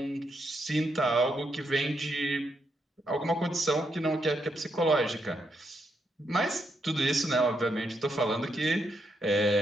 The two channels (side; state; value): both; normal; correlation 0.80